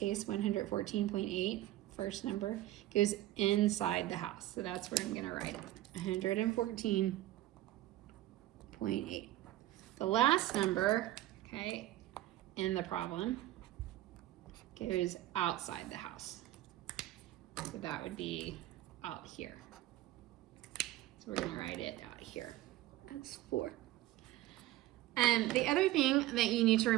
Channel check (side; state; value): left; quieter; 15.4 dB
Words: 114.8, first number, goes inside the house. So that's where I'm going to write it, 114.8. The last number, okay, in the problem goes outside the house. So that would be out here. So we're going to write it out here as 4. And the other thing that you need to